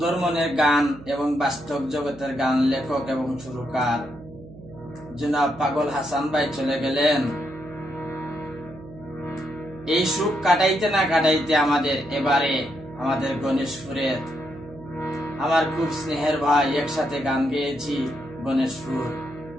মনের গান এবং বাস্তব জগতের গান লেখক এবং সুরকার জনাব পাগল হাসান ভাই চলে গেলেন। এই সুখ কাটাইতে না কাটাইতে এবারে আমাদের গণেশপুরের আমার খুব স্নেহের ভাই, একসাথে গান গেয়েছি গণেশপুর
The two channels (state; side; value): noise; right; hum, 18 dB below the sound